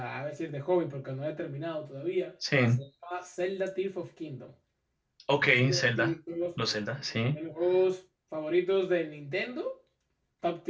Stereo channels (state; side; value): identical; both; correlation 1.00